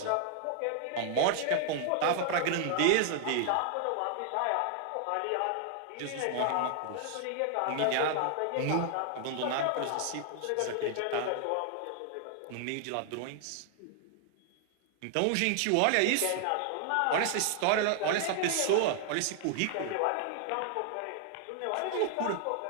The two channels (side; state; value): both; different; correlation 0.00